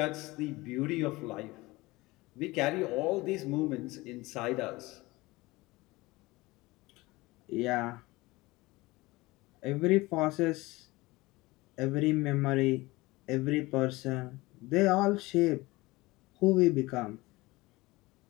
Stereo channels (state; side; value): quieter; right; 21.1 dB